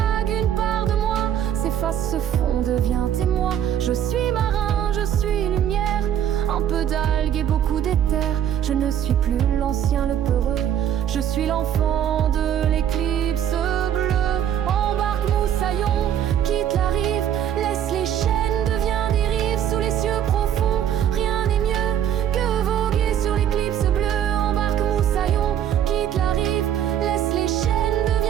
une part de moi s'efface, se fond, devient témoin. Je suis marin, je suis lumière, un peu d'algues et beaucoup d'éther. Je ne suis plus l'ancien, le peureux, je suis l'enfant de l'éclipse bleue. Embarque moussaillon, quitte la rive, laisse les chaînes, deviens dérive sous les cieux profonds. Rien n'est mieux que voguer sur l'éclipse bleue. Embarque moussaillon, quitte la rive, laisse les chaînes,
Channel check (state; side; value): quieter; left; 9.9 dB